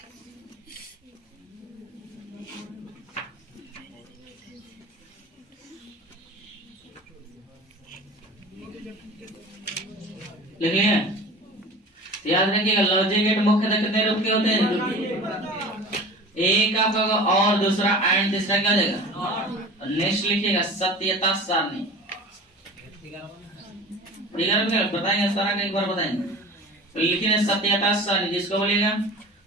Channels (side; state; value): both; normal; correlation 0.38